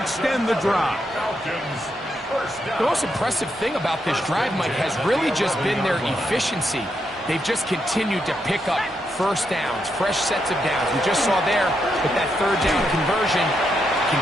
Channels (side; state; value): both; normal; correlation 0.81